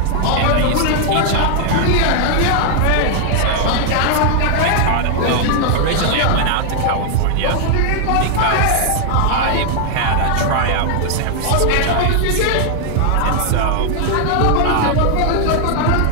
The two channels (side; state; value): both; different; correlation 0.00